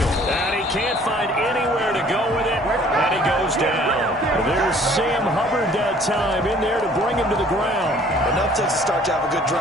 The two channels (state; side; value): normal; both; correlation 0.55